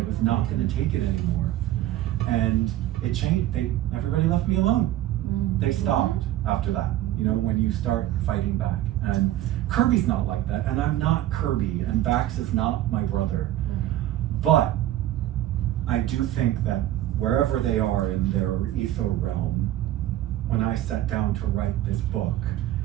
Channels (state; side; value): quieter; left; 13.9 dB